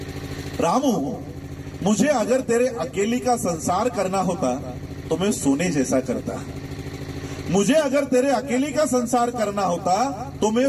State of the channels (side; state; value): both; identical; correlation 1.00